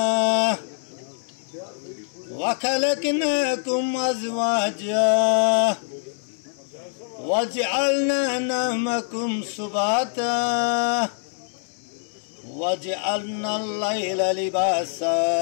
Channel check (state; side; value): silent; right; digital silence